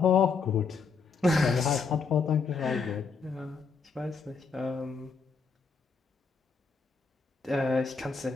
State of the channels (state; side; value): quieter; right; 5.1 dB